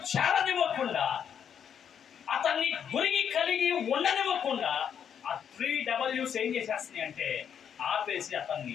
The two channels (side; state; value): right; quieter; 8.2 dB